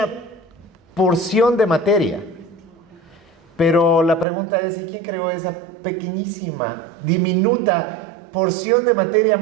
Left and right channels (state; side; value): drops out; left; at 4.2 s